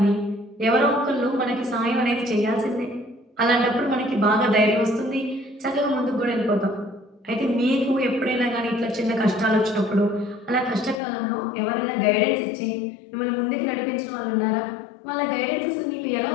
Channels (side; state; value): right; drops out; at 11.0 s